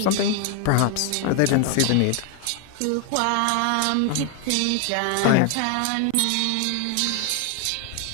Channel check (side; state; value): both; different; correlation 0.01